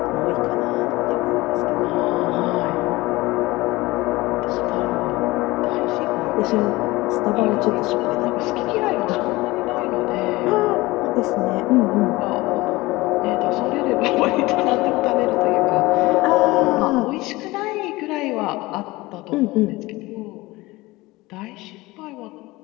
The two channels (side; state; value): right; quieter; 20.5 dB